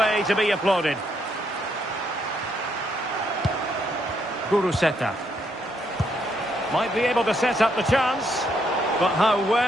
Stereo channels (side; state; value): both; normal; correlation 0.74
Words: to be applauded. Guruseta. Might be able to set up the chance. But how